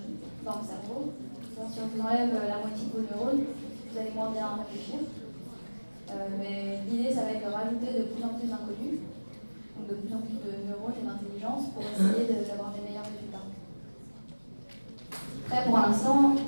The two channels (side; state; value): both; inverted; correlation -1.00